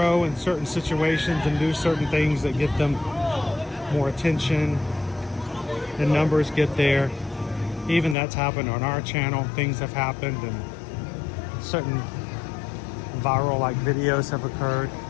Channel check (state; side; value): drops out; right; at 8.2 s